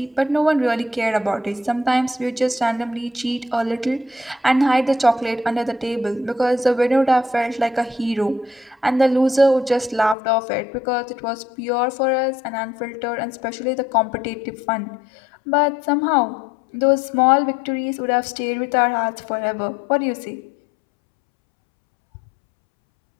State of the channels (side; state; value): right; drops out; at 10.2 s